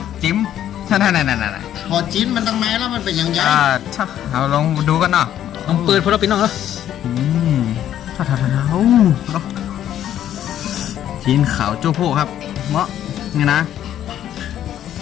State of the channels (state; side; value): quieter; right; 11.1 dB